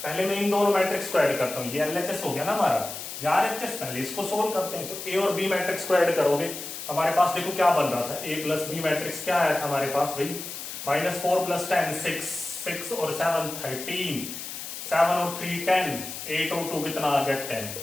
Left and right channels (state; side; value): noise; left; hiss, 8 dB below the sound